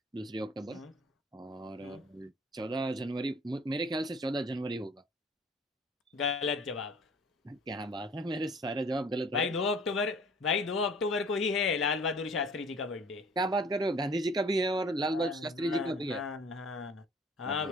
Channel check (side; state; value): both; normal; correlation 0.51